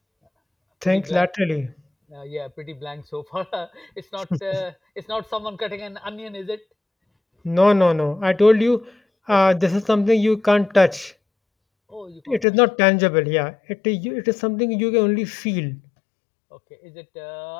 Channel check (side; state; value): right; drops out; at 12.5 s